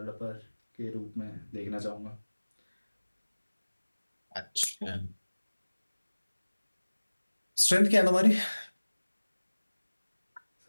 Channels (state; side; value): inverted; both; correlation -1.00